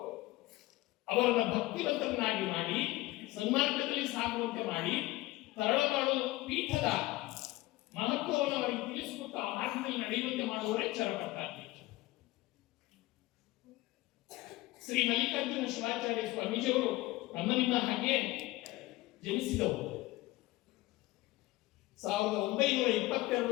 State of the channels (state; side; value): quieter; right; 18.8 dB